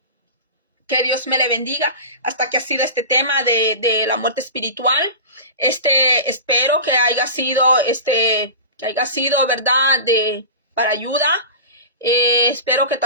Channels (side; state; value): both; inverted; correlation -0.30